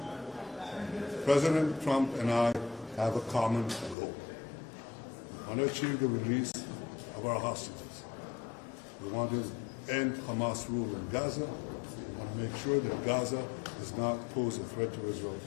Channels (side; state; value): right; drops out; at 4.0 s